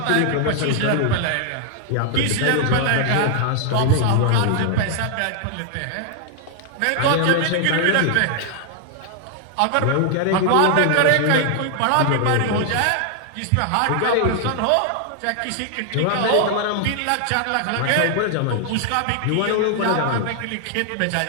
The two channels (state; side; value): different; both; correlation 0.00